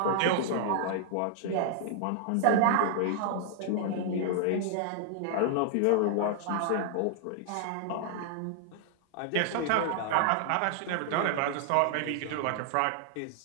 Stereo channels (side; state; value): both; different; correlation -0.01